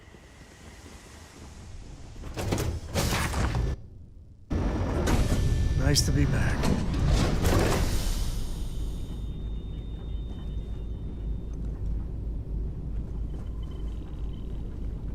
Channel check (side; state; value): both; identical; correlation 1.00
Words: Nice to be back.